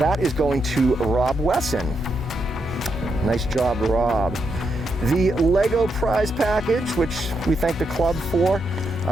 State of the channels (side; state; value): both; normal; correlation 0.82